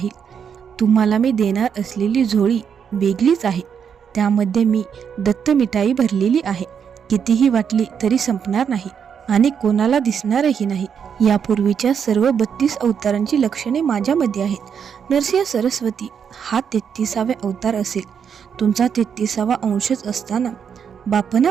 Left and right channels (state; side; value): quieter; left; 7.4 dB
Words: तुम्हाला मी देणार असलेली झोळी वेगळीच आहे. त्यामध्ये मी दत्त मिठाई भरलेली आहे. कितीही वाटली तरी संपणार नाही आणि कोणाला दिसणारही नाही. यापूर्वीच्या सर्व 32 अवतारांची लक्षणे माझ्यामध्ये आहेत. नरसिंह सरस्वती हा 33वा अवतार असेल. तुमचा 33वा अंशच असताना,